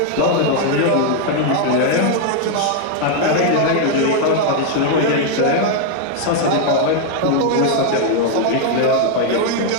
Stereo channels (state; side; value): different; both; correlation 0.00